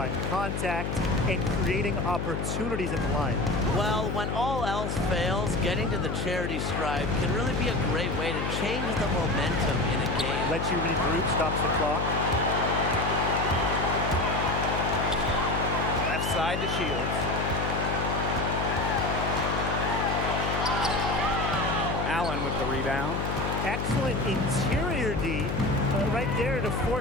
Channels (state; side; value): noise; left; hum, 2 dB below the sound